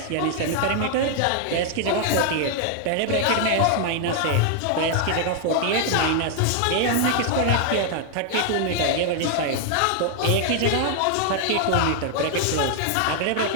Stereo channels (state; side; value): different; both; correlation 0.00